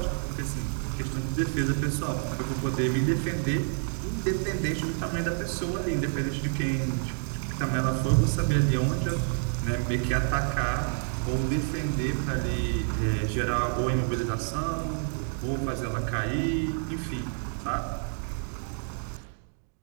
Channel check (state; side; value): silent; left; 59 dB below the other